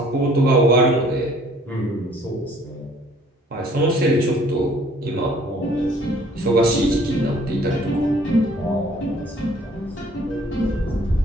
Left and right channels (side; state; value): both; normal; correlation 0.57